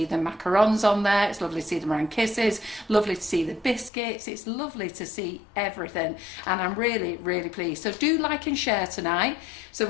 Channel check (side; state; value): right; drops out; at 3.9 s